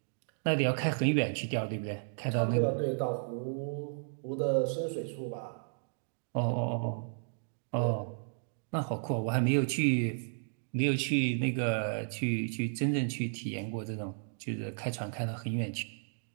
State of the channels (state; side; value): silent; left; digital silence